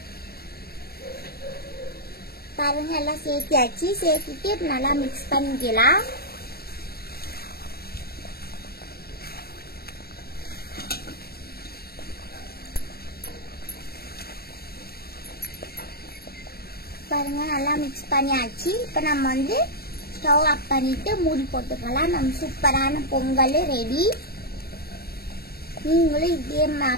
பாருங்க எல்லாம் சேர்த்தியாச்சு. சேர்த்திட்டு நல்லா மிக்ஸ் பண்ணிக்கலாம். பாருங்க நல்லா மிக்ஸ் பண்ணியாச்சு. இப்போ நம்ம வந்து ஸ்டவ் ஆஃப் பண்ணிட்டு மூடி போட்டுக்கலாம். நம்ம சூப்பரான பொங்கல் ரெடி. நீங்களும் இதே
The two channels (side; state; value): right; late; 0.45 ms